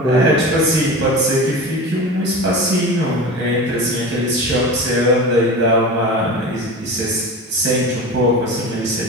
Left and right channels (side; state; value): both; normal; correlation 0.30